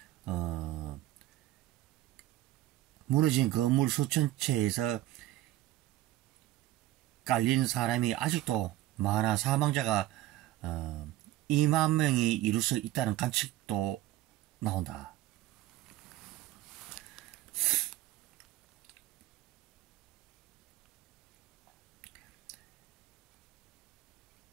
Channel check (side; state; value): left; quieter; 15.2 dB